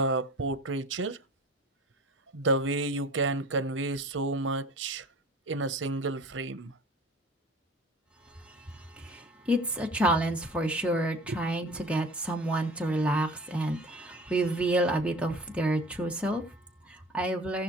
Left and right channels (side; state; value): both; normal; correlation 0.42